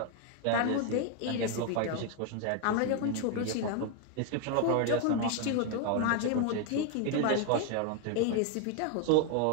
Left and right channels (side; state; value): both; different; correlation 0.01